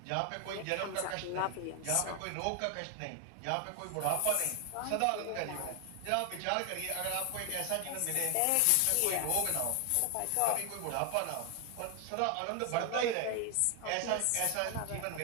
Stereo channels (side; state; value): both; different; correlation 0.00